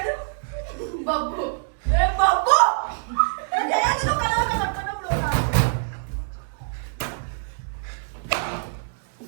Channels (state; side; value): silent; left; 62 dB below the other